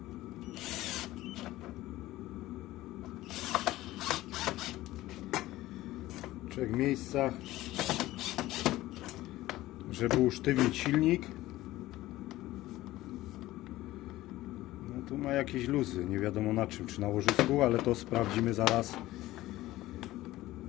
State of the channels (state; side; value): quieter; right; 16.6 dB